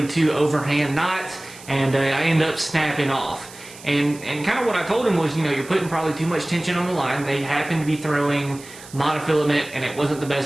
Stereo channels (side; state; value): right; noise; hiss, 18 dB below the sound